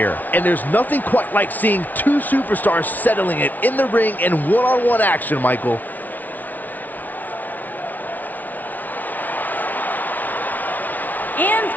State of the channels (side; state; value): right; late; 0.079 ms